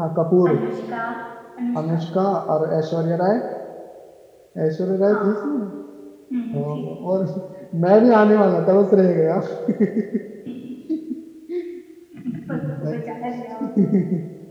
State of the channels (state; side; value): identical; both; correlation 1.00